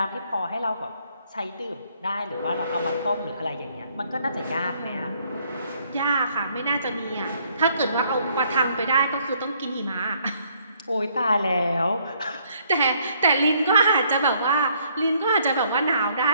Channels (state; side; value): inverted; both; correlation -0.67